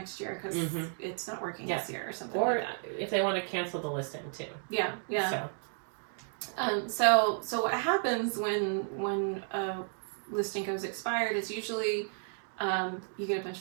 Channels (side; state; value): left; silent; 56 dB below the other